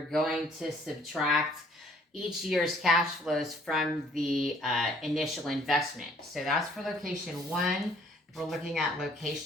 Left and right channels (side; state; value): both; normal; correlation 0.60